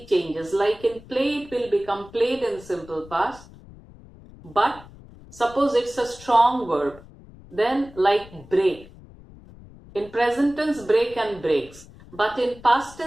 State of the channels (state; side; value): noise; left; rumble, 20 dB below the sound